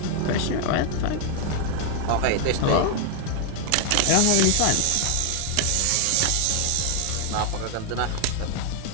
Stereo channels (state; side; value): different; both; correlation 0.00